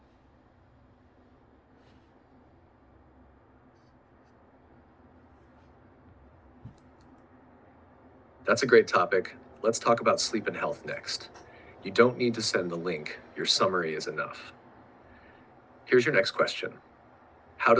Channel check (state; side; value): identical; both; correlation 1.00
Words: That's a great topic. Let's talk about sleep and health next. You don't need to send the link, your summary is enough. Here's your next question. How